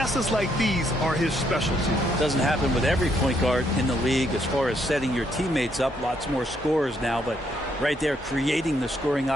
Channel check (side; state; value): both; normal; correlation 0.73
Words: like these are his specialty. Doesn't happen with every point guard in the league as far as setting your teammates up. Lots more scorers now, but right there creating the scoring